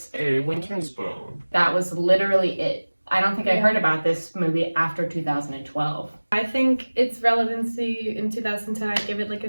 a winter's bone. That was literally it. I don't think I heard about this movie after 2012. I think its relevancy in 2010, I'd give it like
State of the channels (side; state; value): both; inverted; correlation -1.00